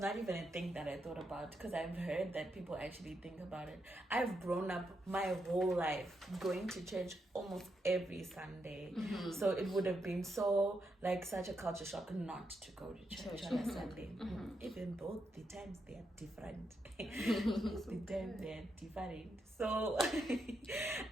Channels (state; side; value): normal; both; correlation 0.82